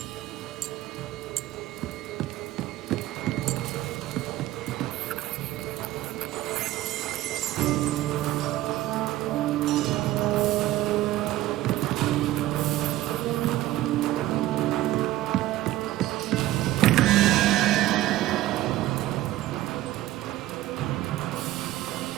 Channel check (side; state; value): left; quieter; 15.6 dB